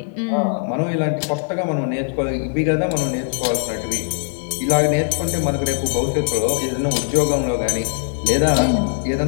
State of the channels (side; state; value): right; silent; 65 dB below the other